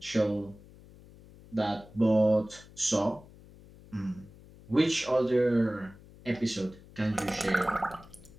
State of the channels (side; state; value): left; noise; hum, 22 dB below the sound